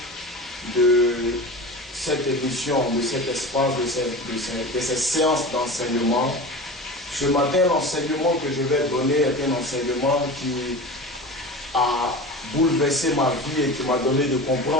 de cette émission, de cet espace, de ces séances d'enseignement. Ce matin, l'enseignement que je vais donner est un enseignement qui a bouleversé ma vie et qui m'a donné de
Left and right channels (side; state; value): both; normal; correlation 0.31